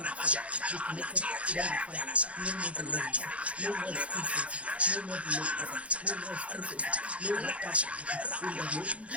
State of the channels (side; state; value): left; late; 0.063 ms